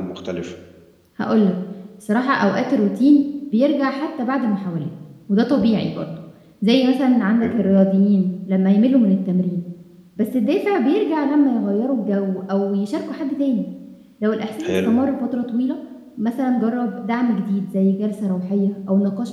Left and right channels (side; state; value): both; identical; correlation 1.00